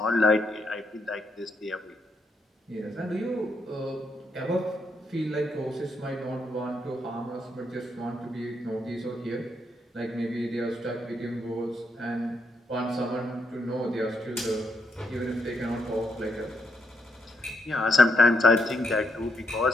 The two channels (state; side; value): normal; both; correlation 0.78